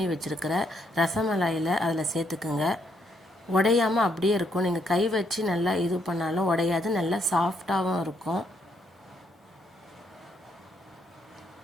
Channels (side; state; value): both; normal; correlation 0.74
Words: வச்சுருக்கிற ரசமலாயில் அதில் சேர்த்துக்குங்க. உடையாமல் அப்படியே இருக்கும். நீங்கள் கை வச்சு நல்லா இது பண்ணாலும் உடையாது, நல்லா சாஃப்டாகவும் இருக்கும்.